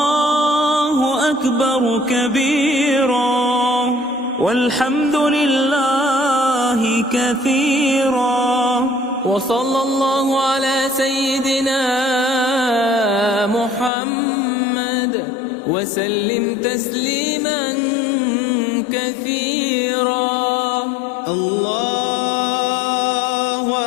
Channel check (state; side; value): drops out; right; at 13.9 s